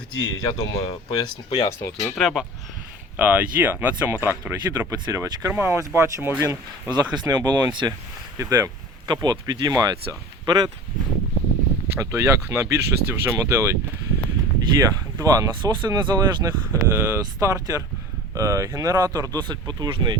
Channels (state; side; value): normal; both; correlation 0.37